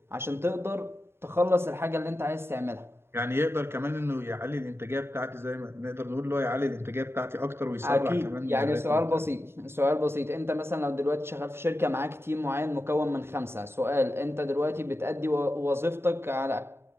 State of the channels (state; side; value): late; left; 0.12 ms